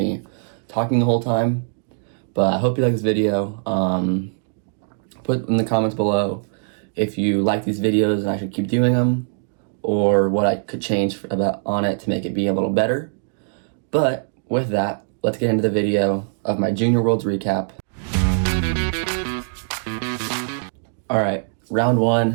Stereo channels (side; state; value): left; silent; digital silence